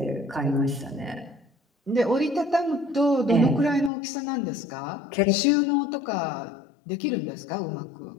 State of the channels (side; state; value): right; drops out; at 3.9 s